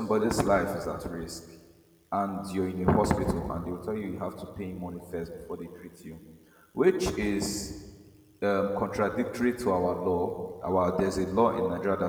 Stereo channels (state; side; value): identical; both; correlation 1.00